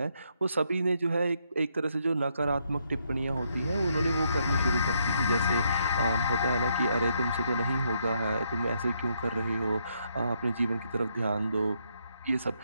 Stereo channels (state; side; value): inverted; both; correlation -0.75